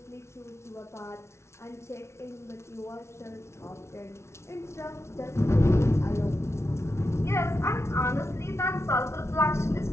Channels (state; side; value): late; right; 0.13 ms